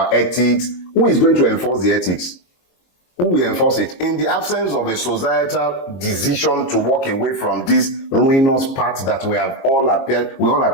ethics. Who is going to enforce the ethics? Who will enforce it? In the absence of a societal decision to walk away from this ruinous path that we all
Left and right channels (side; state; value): right; late; 22 ms